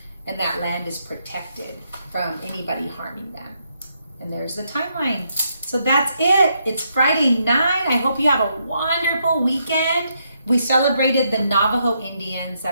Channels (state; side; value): inverted; both; correlation -0.77